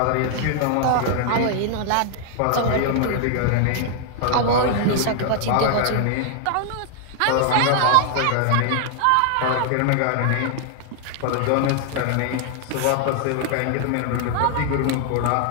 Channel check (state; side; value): different; both; correlation 0.00